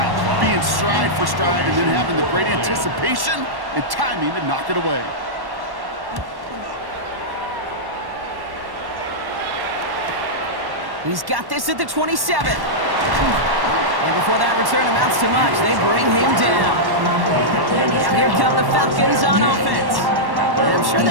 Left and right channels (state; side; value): late; left; 1.1 ms